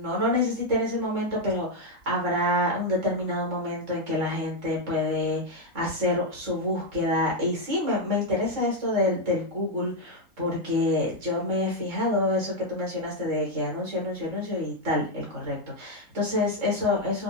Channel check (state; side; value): late; left; 3.6 ms